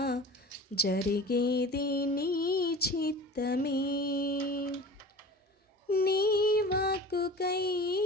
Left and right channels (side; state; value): both; normal; correlation 0.38